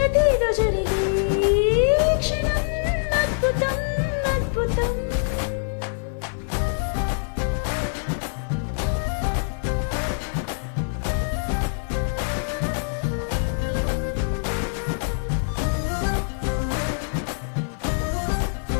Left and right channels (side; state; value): right; silent; 55 dB below the other